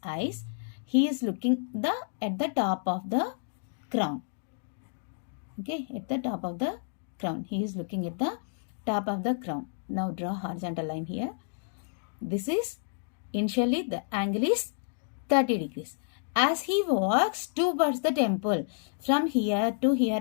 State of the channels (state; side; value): silent; right; digital silence